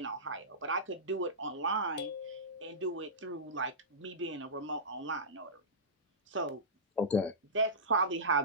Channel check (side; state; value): both; normal; correlation -0.17